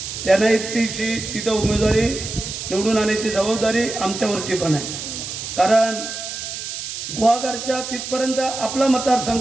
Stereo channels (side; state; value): right; noise; hiss, 7 dB below the sound